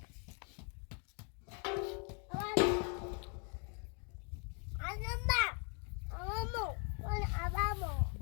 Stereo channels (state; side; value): quieter; right; 38.6 dB